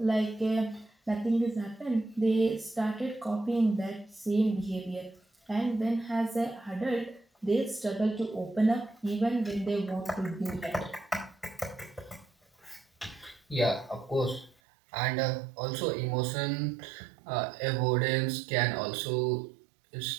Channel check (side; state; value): left; drops out; at 14.6 s